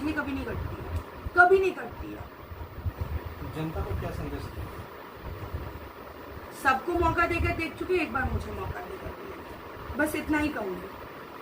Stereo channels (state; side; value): identical; both; correlation 1.00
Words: कभी नहीं कटती है, कभी नहीं कटती है। जनता को क्या संदेश दें? सबको मौका देकर देख चुके, एक बार मुझे मौका देकर दिया, बस इतना ही कहूँगी।